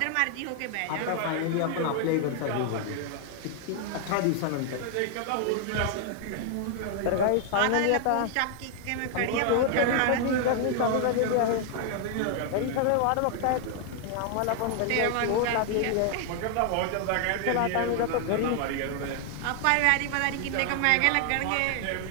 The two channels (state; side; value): different; both; correlation 0.00